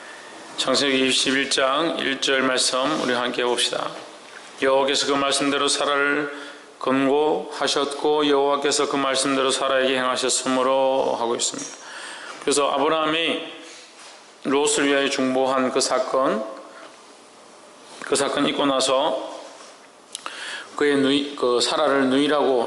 창세기 21장 1절 말씀 우리 함께 봅시다. 여호와께서 그 말씀대로 사라를 권고하셨고 여호와께서 그 말씀대로 사라에게 행하셨으므로 하고 있습니다. 그래서 아브라함이 롯을 위하여 중보한 그 사건 있고 나서 그 사라를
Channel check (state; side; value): identical; both; correlation 1.00